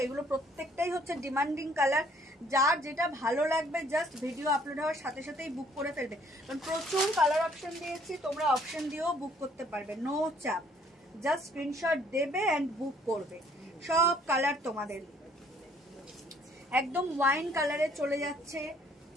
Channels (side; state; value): both; normal; correlation 0.62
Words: এগুলো প্রত্যেকটাই হচ্ছে ডিমান্ডিং কালার। যার যেটা ভালো লাগবে জাস্ট ভিডিও আপলোড হওয়ার সাথে সাথেই বুক করে ফেলবে, কারণ প্রচুর কালার অপশন দিয়েছি, তোমরা অপশন দিয়েও বুক করতে পারবে, নো চাপ। জাস্ট স্ক্রিনশট দেবে এন্ড বুক করবে, সব কালার তোমাদের। একদম ওয়াইন কালারে চলে যাচ্ছে,